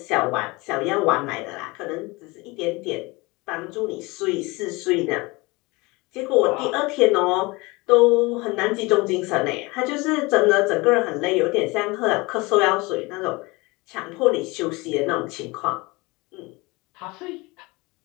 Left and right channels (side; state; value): right; quieter; 24.2 dB